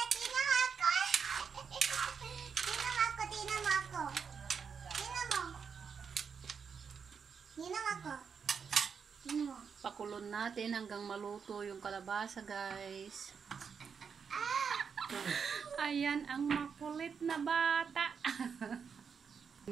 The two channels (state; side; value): quieter; left; 6.3 dB